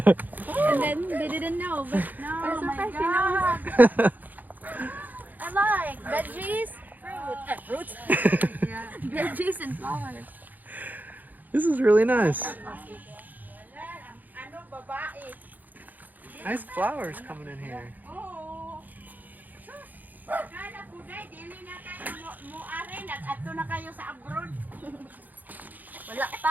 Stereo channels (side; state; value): left; late; 0.083 ms